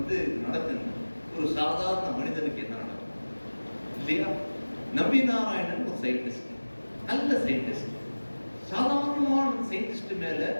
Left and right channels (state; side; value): inverted; both; correlation -1.00